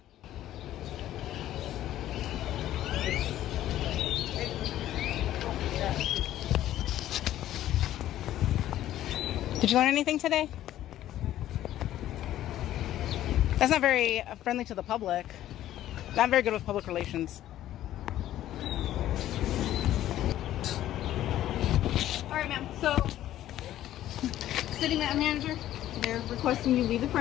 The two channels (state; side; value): quieter; right; 13.0 dB